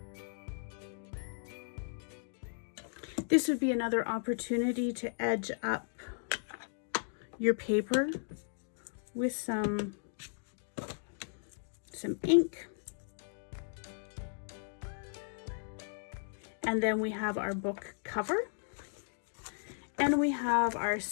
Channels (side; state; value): right; silent; digital silence